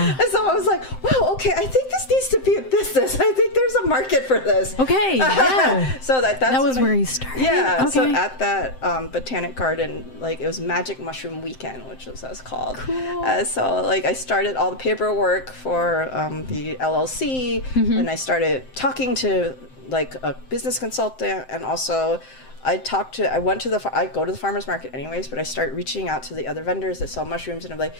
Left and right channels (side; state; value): right; late; 7.7 ms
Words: so I was like, wow, okay, I think this needs to be a business. I think there's a market for this. Okay, yeah. So that was where you started. Yeah. Okay. So at that Botanic Garden, like, it was Magic Mushroom Weekend, which was what it was called. Cool. So like I started all the paperwork for the LLC, and I started talking to like a business consultant, and also I go to the farmer's market anyways, but I start reaching out to the other vendors that sell mushrooms, and I'm like,